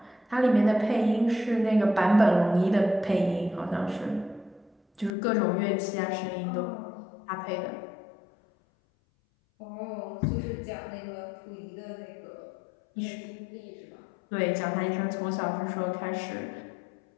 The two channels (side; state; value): right; drops out; at 5.1 s